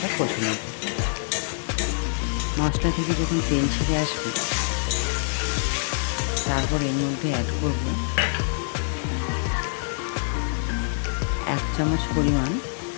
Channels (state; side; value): silent; right; digital silence